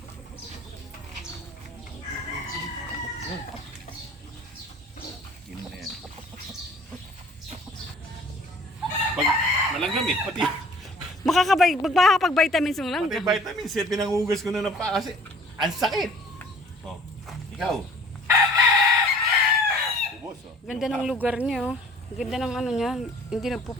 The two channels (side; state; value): both; normal; correlation 0.52